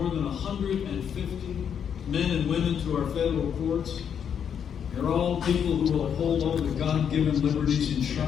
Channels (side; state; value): right; quieter; 8.0 dB